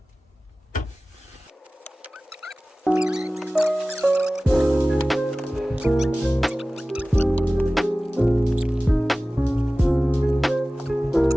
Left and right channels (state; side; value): normal; both; correlation 0.97